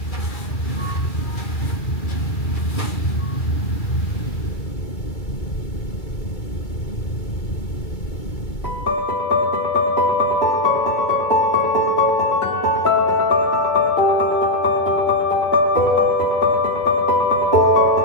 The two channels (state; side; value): late; right; 2.2 ms